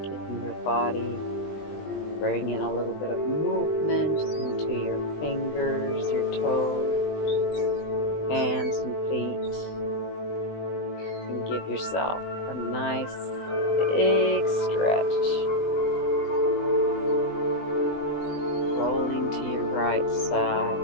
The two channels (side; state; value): right; late; 20 ms